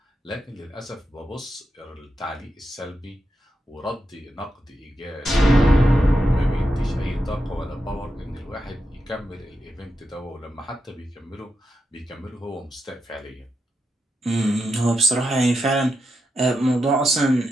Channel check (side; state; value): both; normal; correlation 0.86